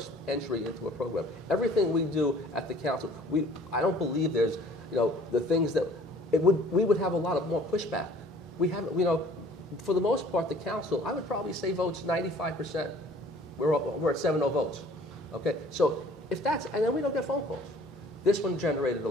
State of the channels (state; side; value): normal; both; correlation 0.53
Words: entry into a program. Everything we do at the council, I don't believe there's, the things that, we would have a lot of more pushback. We haven't, for the most part, the council, I would probably say votes 95%. We're at 7-0 votes. Okay, so if that's, and then we don't get phone calls. This one generated a